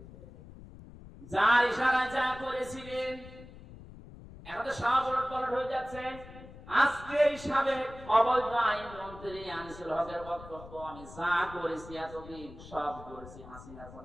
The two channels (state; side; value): noise; left; rumble, 17 dB below the sound